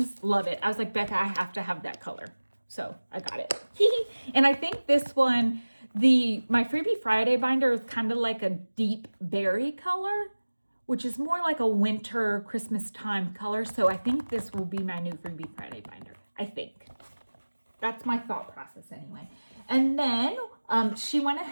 Love it. I was like, Becca, I have to have that color. So I got it. And I think this one, my Freebie Friday binder is kind of like a deep berry color, which is more like a winter Christmas time color. So I think this will be my new Freebie Friday binder. I think. That's my thought process anyway. And then she went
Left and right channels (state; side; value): inverted; both; correlation -1.00